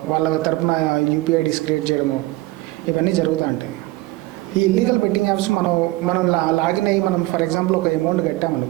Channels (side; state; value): left; quieter; 19.7 dB